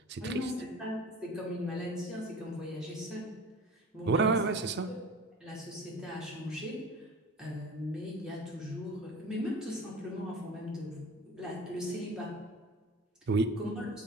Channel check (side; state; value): both; normal; correlation 0.38